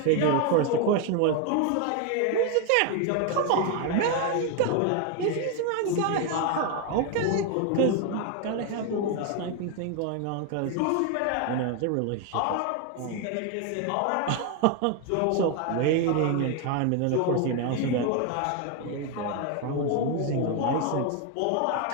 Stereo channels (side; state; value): both; different; correlation 0.01